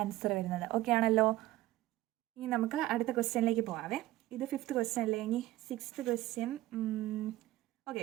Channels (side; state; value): left; quieter; 16.3 dB